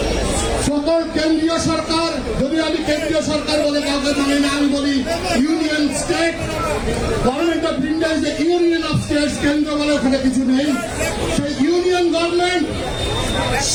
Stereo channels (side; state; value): both; identical; correlation 1.00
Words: সকল কেন্দ্রীয় সরকার, যদি আমি কেন্দ্রীয় সরকার বলে কাউকে মানে না, আমি বলি union state government of India is the union of states. কেন্দ্র বলে ওখানে কিছু নেই। সেই ইউনিয়ন গভর্নমেন্ট